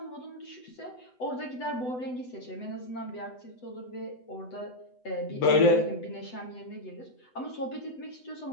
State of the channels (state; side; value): late; right; 8.0 ms